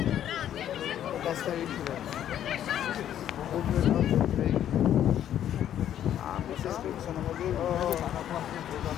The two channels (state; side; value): quieter; right; 10.7 dB